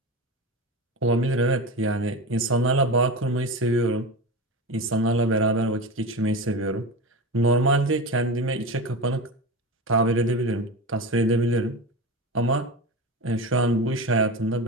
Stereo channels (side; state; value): both; normal; correlation 0.24